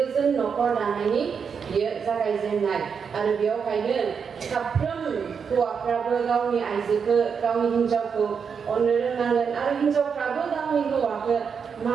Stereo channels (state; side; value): quieter; left; 6.4 dB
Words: न'खर दानायनि बियो जागायजेननाय आरो बेयावहायनो साफ्रोम हौवाफ्राबो गावनि आइजोखौ गावनि हिन्जावखौ अननो रोंनांगोन आरो हिन्जावफ्राबो गावनि हौवाखौ